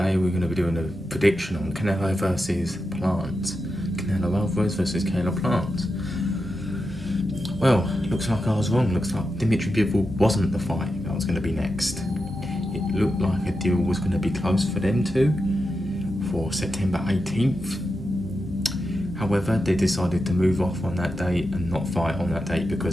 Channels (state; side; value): normal; both; correlation 0.89